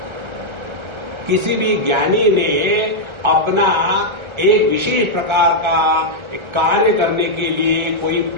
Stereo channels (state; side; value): late; left; 1.3 ms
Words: किसी भी ज्ञानी ने अपना एक विशेष प्रकार का कार्य करने के लिए कोई